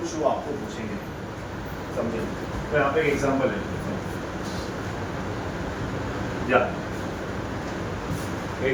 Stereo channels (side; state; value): both; identical; correlation 1.00